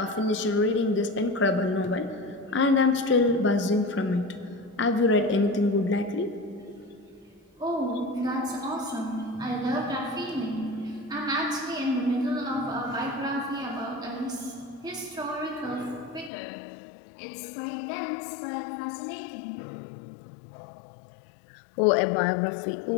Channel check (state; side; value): drops out; right; at 16.3 s